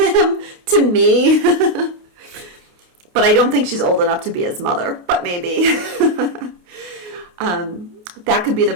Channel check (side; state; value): left; late; 28 ms